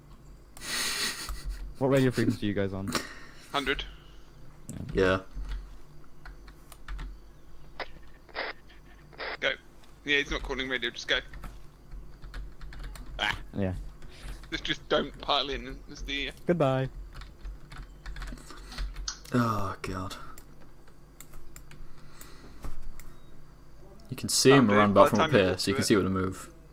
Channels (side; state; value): both; identical; correlation 1.00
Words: What radio frequency are you guys on? 100. Yeah. Go. Yeah, he's not calling radio, just go. Yeah. Just don't pile in as the... Goodbye. Oh god. You can see Oh, him dude, around by back the from up time you here, walk so you through can it. see where to move.